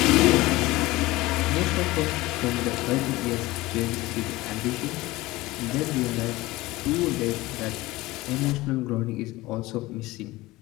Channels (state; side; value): quieter; right; 19.5 dB